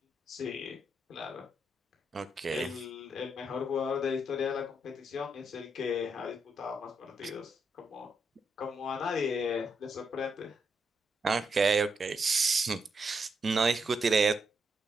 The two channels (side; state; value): both; normal; correlation 0.80